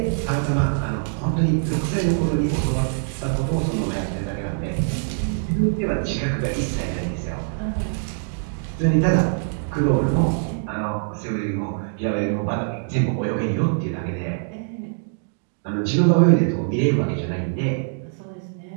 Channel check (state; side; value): silent; left; digital silence